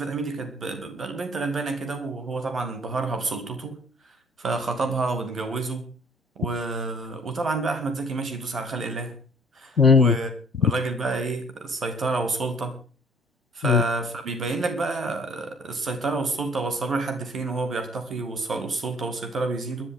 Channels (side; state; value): both; normal; correlation 0.57